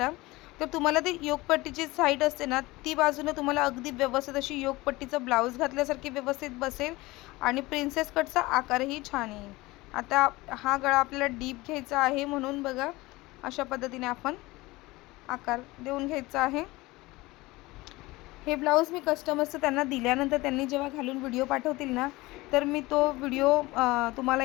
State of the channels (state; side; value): quieter; right; 20.8 dB